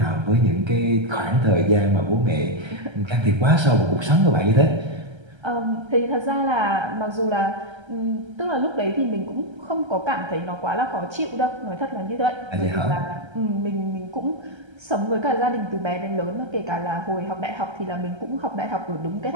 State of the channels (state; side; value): late; left; 1.3 ms